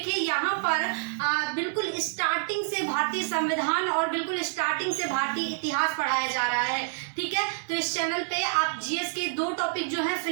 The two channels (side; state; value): left; silent; digital silence